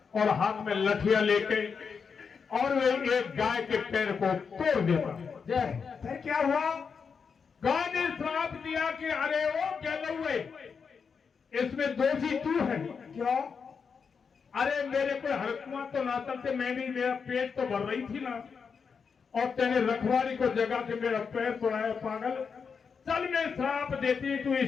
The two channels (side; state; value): right; quieter; 5.9 dB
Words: और हाथ में लठिया लेके, और वे एक गाय के पैर को तोड़ देता। फिर क्या हुआ, गाय ने श्राप दिया कि अरे वो गलौए, इसमें दोषी तू है। क्यों, अरे मेरे को हरकुआ तो ना चलते, मैंने मेरा पेट तो भर रही थी ना, और तेने रखवाली को जगा के मेरा पैर तोड़ाया पागल। चल मैं श्राप देती तू